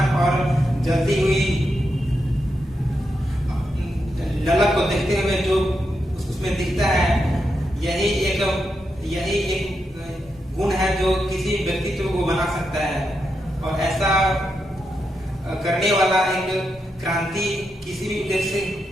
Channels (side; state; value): both; normal; correlation 0.85